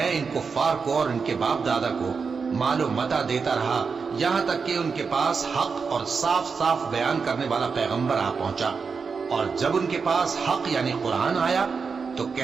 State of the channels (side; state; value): left; quieter; 5.3 dB